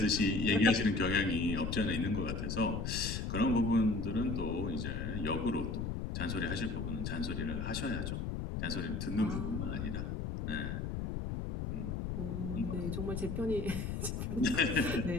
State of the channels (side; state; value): left; noise; rumble, 3 dB below the sound